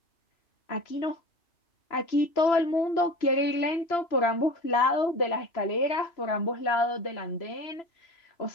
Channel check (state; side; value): late; right; 3.0 ms